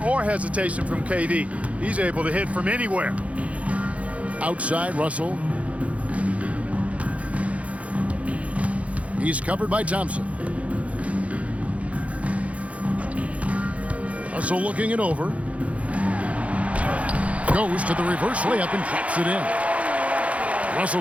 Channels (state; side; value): late; left; 0.065 ms